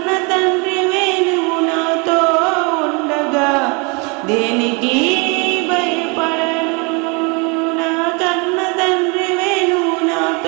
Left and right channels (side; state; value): left; quieter; 31.2 dB